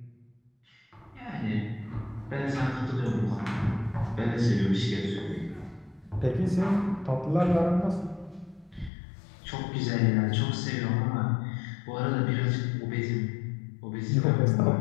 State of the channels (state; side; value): drops out; right; at 8.9 s